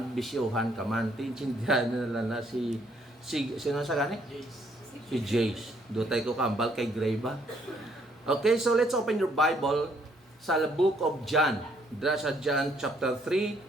bisyuhan ka man. Tinsindihan nila na sino sa gani? Si Jace. Dutay ko kambal kay Greba. Okay, so let's open your Bible sa book of John. Dra sa John chapter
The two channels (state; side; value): normal; both; correlation 0.68